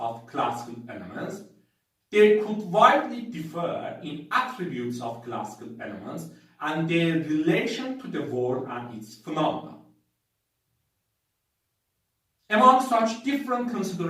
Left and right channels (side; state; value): both; identical; correlation 1.00